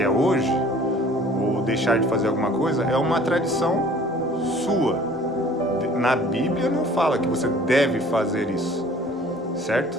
é hoje, ou deixar de fazer alguma coisa, é uma tradição sua. Na Bíblia não fala que você deve fazer isso, certo?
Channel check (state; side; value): normal; both; correlation 0.51